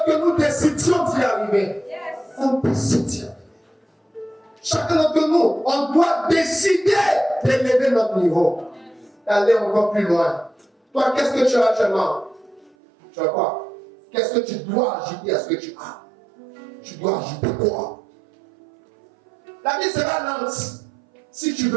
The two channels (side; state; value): left; drops out; at 12.8 s